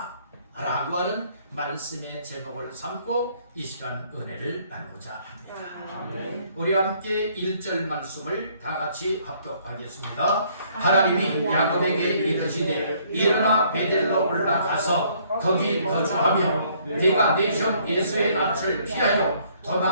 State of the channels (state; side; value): inverted; both; correlation -0.64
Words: 라고 하는 말씀의 제목을 삼고 이 시간 은혜를 나누자 합니다. 우리 함께 1절 말씀을 다 같이 합독하겠습니다. 하나님이 야곱에게 이르시되 일어나 베델로 올라가서 거기 거주하며 네가 내 형 에서의 낯을 피하여